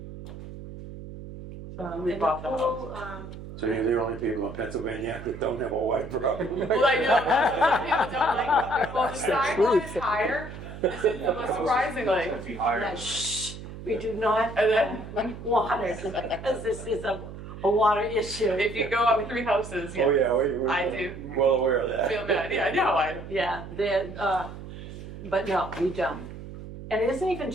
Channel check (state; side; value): noise; right; hum, 12 dB below the sound